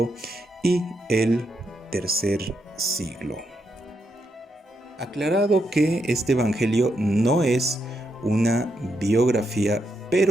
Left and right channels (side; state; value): both; normal; correlation 0.81